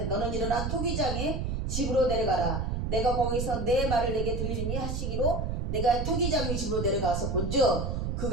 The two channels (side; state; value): right; noise; rumble, 1 dB below the sound